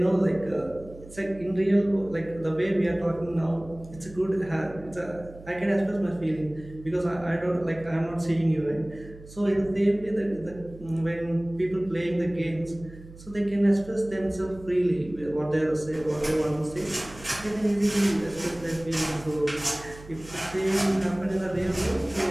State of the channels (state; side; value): noise; right; hum, 18 dB below the sound